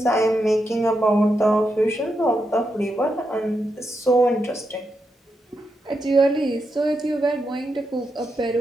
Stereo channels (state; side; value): normal; both; correlation 0.84